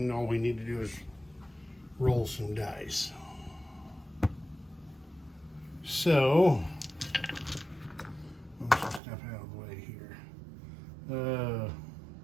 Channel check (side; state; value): left; drops out; at 9.0 s